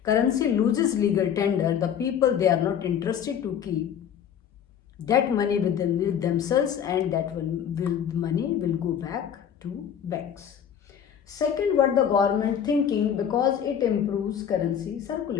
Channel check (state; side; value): quieter; right; 8.6 dB